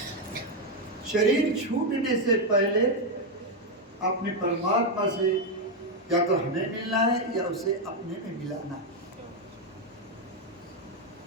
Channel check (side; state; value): both; normal; correlation 0.04